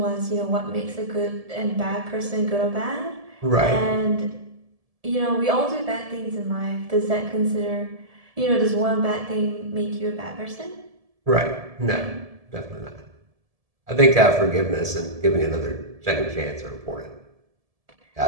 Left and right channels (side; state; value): left; late; 1.7 ms